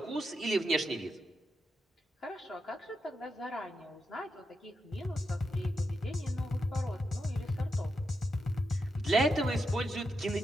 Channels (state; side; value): normal; both; correlation 0.86